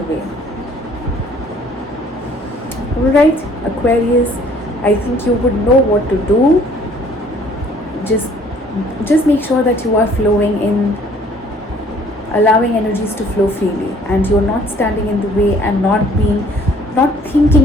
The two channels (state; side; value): normal; both; correlation 0.57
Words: way. Alright, Aquarius, I think you would know what to do. Just make sure that you are flowing in, allowing energies to flow freely, and you're not standing in the way and not